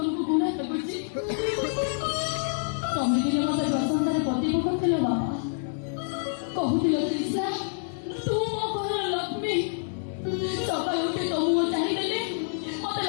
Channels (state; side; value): silent; right; digital silence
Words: ଘୃଣା ଲାଗୁଛି? ତମେ ଦିନ ମତେ ପ୍ରଶଂସାରେ ପ୍ରତିଭ କରିଥିଲ ବାପା। କହୁଥିଲ ତ୍ରିଷା ତୁ ମୋ ଘରର ଲକ୍ଷ୍ମୀ। ସକାଳୁ ଉଠି ତୋ ମୁହଁ ଚାହିଁଦେଲେ ମତେ